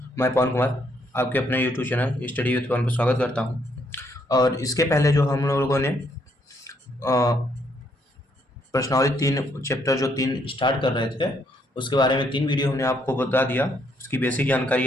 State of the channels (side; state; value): both; normal; correlation 0.72